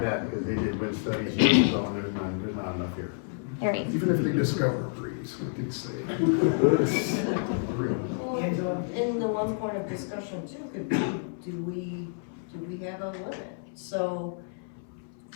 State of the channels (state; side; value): silent; right; 58 dB below the other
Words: they did wind studies, and so on, there's not enough here. Right. Even if they discover a breeze, we could say. Well, in the one point of discussion too, could be, do we have a limit? So,